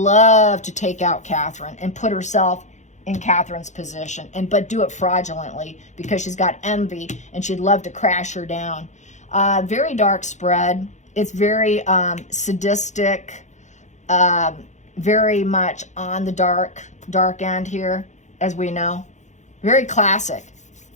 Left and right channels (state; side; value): late; right; 0.34 ms